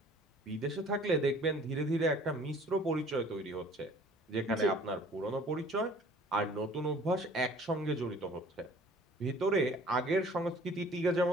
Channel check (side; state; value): both; normal; correlation 0.52